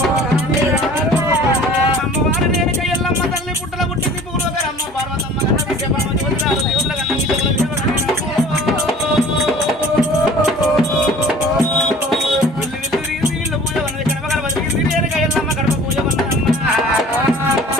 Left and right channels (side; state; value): both; normal; correlation 0.48